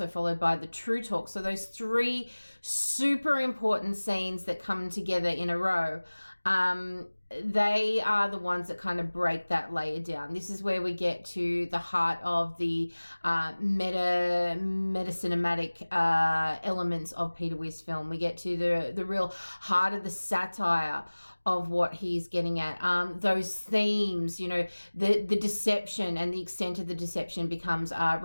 followed by the TruTalk. So those three super important scenes that come together in a row, they are the ones that kind of break that layer down. This is where we get to the heart of the meta cinematic elements of Peter Weir's film. We get to the real heart of the satire of what he's getting at. Those themes, the deception and the extent of the deception becomes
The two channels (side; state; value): both; inverted; correlation -1.00